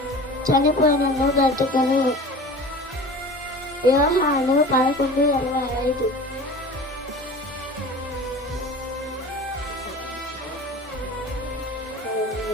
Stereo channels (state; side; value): normal; both; correlation 0.38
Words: చనిపోయినను బ్రతుకను. యోహాను 11:25.